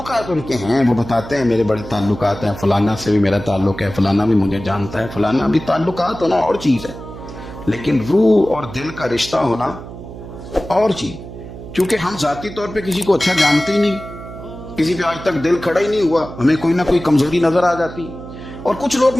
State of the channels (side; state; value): right; noise; hum, 13 dB below the sound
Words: ان کے ہیں، وہ بتاتے ہیں میرے بڑے تعلقات ہیں، فلانا سے بھی میرا تعلق ہے، فلانا بھی مجھے جانتا ہے، فلانا بھی۔ تعلقات ہونا اور چیز ہے، لیکن روح اور دل کا رشتہ ہونا اور چیز۔ کیونکہ ہم ذاتی طور پہ کسی کو اچھا جانتے ہی نہیں، کسی پہ آج تک دل کھڑا ہی نہیں ہوا، ہمیں کوئی نہ کوئی کمزوری نظر آ جاتی، اور کچھ لوگ